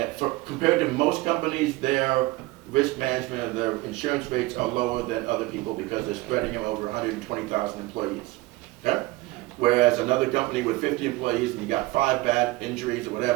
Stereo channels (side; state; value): left; quieter; 20.4 dB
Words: compared to most companies, their risk management and their insurance rates are lower than other people because they're spreading them over 120,000 employees. Okay? Whereas another company with 50 employees and you got 5 bad injuries or